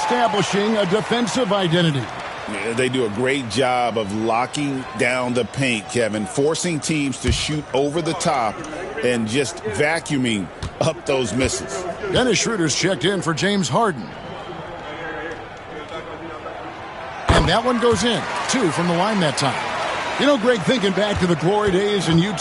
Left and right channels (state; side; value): identical; both; correlation 1.00